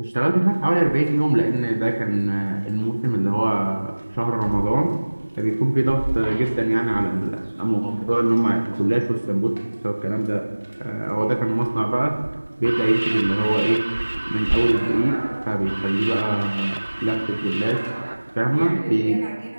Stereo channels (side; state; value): both; inverted; correlation -1.00